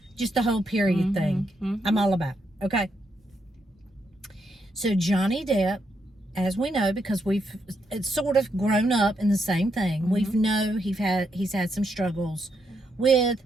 Just the whole period thing. Mm-hmm. I'm all about. Okay. So Johnny Depp, as we know, because it's sort of grown up in the same thing. Mm-hmm. We know he's had some struggles with.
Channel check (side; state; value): both; normal; correlation 0.79